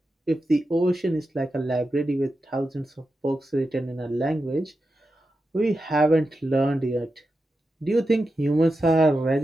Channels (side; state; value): both; normal; correlation 0.90